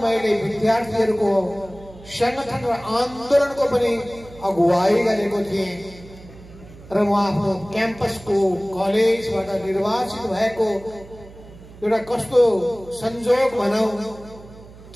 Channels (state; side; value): noise; right; hum, 19 dB below the sound